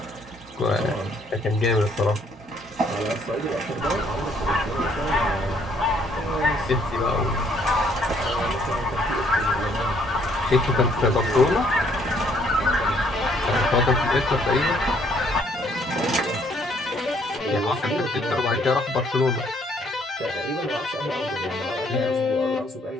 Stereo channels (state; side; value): normal; both; correlation 0.65